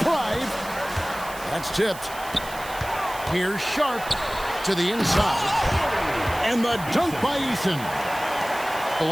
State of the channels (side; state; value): right; noise; hiss, 15 dB below the sound